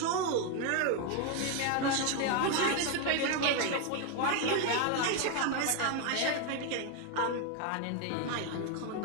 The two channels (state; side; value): different; both; correlation 0.01